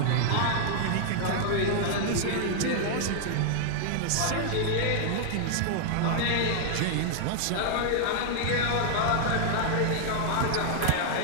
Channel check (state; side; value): different; both; correlation -0.01